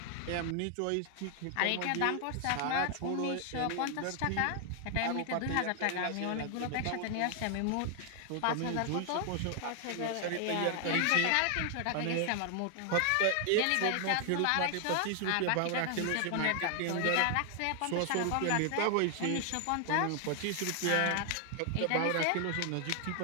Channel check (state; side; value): different; both; correlation 0.00